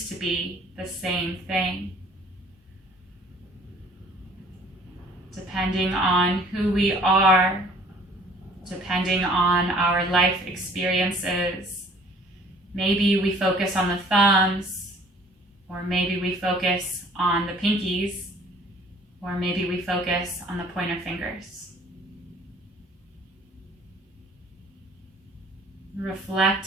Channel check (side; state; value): both; normal; correlation 0.54